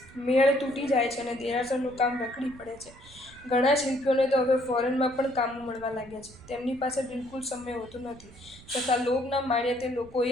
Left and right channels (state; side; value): noise; right; rumble, 21 dB below the sound